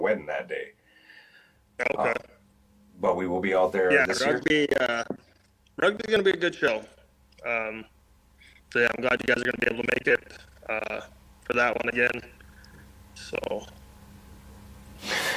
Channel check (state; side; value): identical; both; correlation 1.00